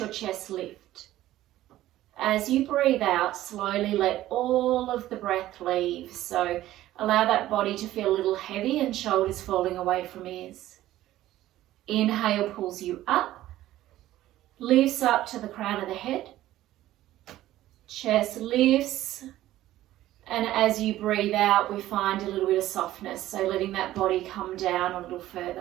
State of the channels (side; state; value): left; quieter; 14.5 dB